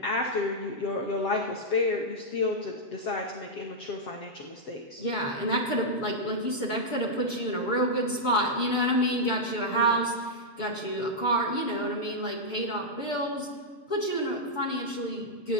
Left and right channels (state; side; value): late; right; 6.9 ms